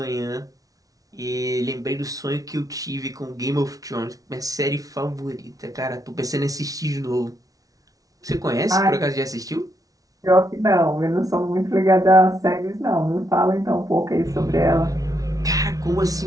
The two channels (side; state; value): left; late; 0.18 ms